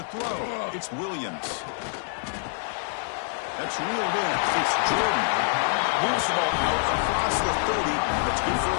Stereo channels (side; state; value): right; silent; digital silence